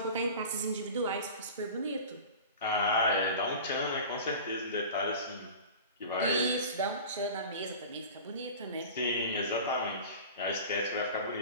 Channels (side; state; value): both; inverted; correlation -0.36